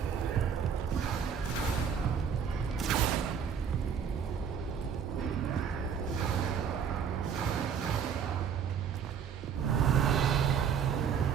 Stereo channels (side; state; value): left; quieter; 7.3 dB